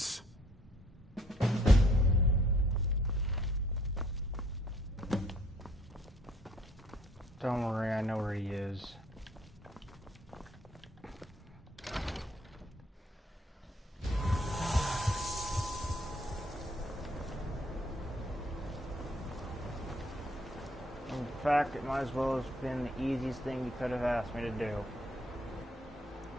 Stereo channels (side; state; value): both; normal; correlation 0.63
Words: Don't worry, I know where he is. In fact, it might as well have been the easiest thing you could have asked me to do.